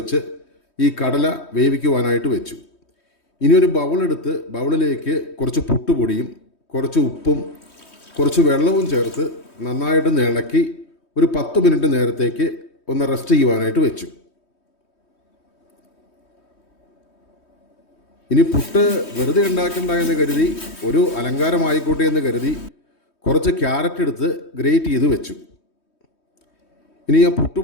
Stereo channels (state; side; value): late; right; 3.2 ms